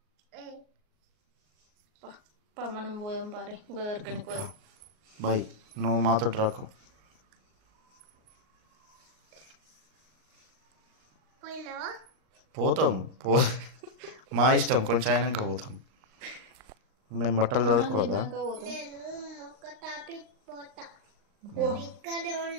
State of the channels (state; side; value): late; left; 38 ms